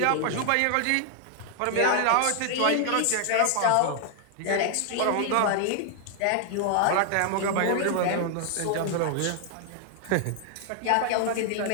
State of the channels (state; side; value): different; both; correlation 0.00